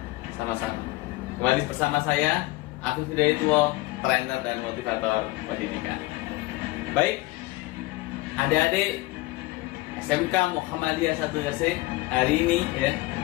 Kembali bersama saya, Afif Hidayatullah, trainer dan motivator pendidikan. Baik, adik-adik SMK Muhammadiyah 1 Gresik, hari ini ya,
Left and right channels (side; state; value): right; quieter; 20.6 dB